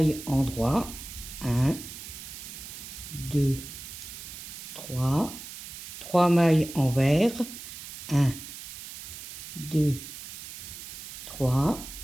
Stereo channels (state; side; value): noise; right; hiss, 11 dB below the sound